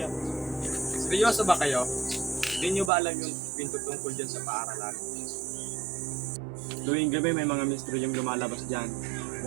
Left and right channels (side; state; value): left; drops out; at 2.9 s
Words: Seryoso ba kayo? Hindi nyo ba alam yung pinto tungkol dyan sa paaralan? Tuwing gabi may mga misteryong lumalabas dyan.